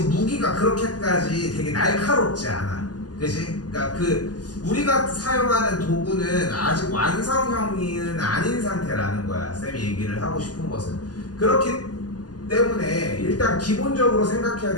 무기가 그렇게까지 되게 날카롭지 않아. 그치? 그러니까 우리가 사용하는 도구는 아직 완성형은 아닌 상태라는 거야. 쌤이 얘기를 하고 싶은 것은. 그렇기 때문에 일단 기본적으로 생각해야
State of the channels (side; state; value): right; late; 0.69 ms